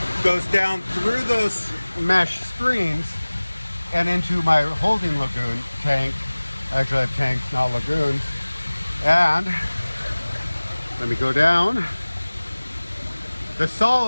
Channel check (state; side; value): inverted; both; correlation -1.00